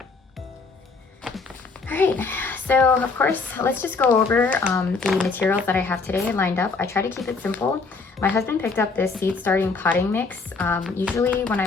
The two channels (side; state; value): right; quieter; 4.3 dB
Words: All right, so of course, let's just go over the materials that I have today lined up. I try to keep it simple. My husband picked up this seed starting potting mix. Usually when